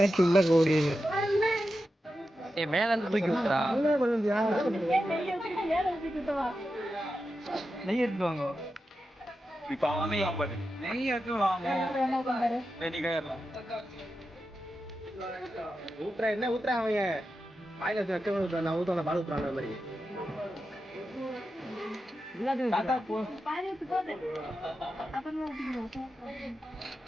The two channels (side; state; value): both; normal; correlation 0.90